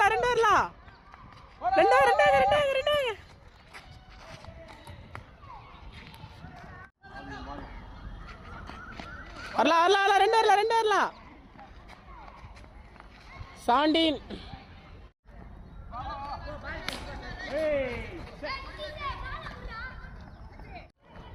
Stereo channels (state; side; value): identical; both; correlation 1.00